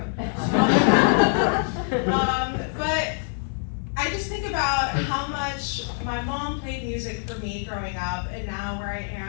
But I just think about how much my mom played music for me growing up, and now where I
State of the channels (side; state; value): right; silent; 57 dB below the other